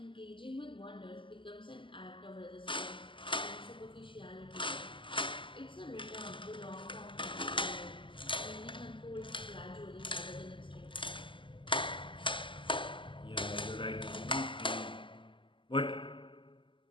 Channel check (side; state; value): right; late; 0.25 ms